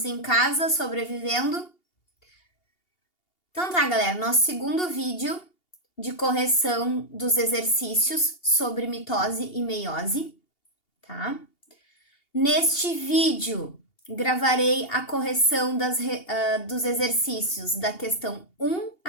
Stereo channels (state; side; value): late; right; 2.8 ms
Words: em casa, sobrevivendo? Então tá, galera, nosso segundo vídeo de correção dos exercícios sobre mitose e meiose, tá? Neste vídeo, gravarei a correção dos exercícios da questão 1